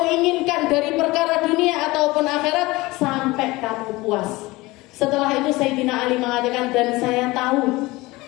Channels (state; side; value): quieter; right; 21.1 dB